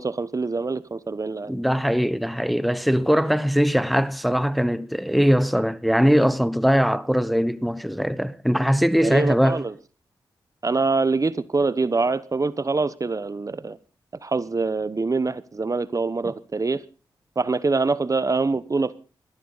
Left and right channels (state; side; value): normal; both; correlation 0.93